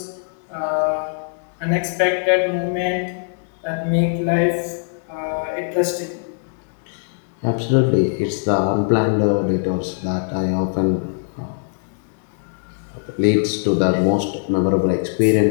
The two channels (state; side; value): silent; right; digital silence